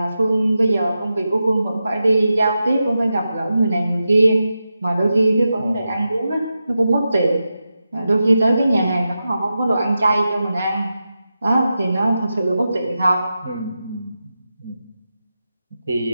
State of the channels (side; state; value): both; inverted; correlation -0.90